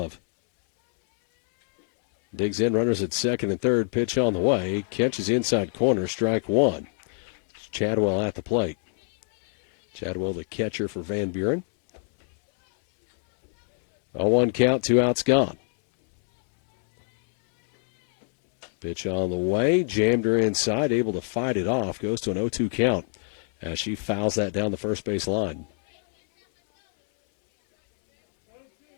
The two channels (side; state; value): right; silent; 62 dB below the other